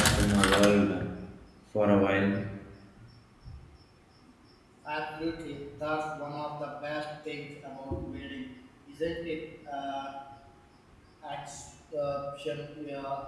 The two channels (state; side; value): identical; both; correlation 1.00